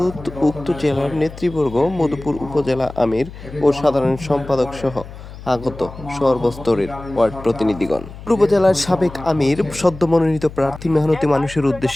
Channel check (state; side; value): noise; left; hum, 15 dB below the sound